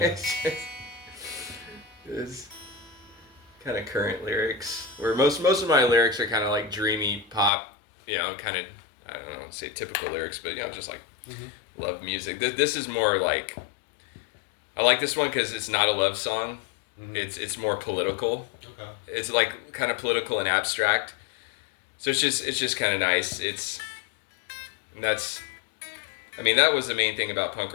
It's kind of current lyrics, where most of my lyrics are kind of like dreamy pop, kind of, I don't know, say typical lyrics, but just like love music. This is more like, I like this one because it's not a love song. It's more political. Okay. It's like kind of political and abstract. So it's just kind of nice. That was the main thing about punk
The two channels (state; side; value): drops out; right; at 7.5 s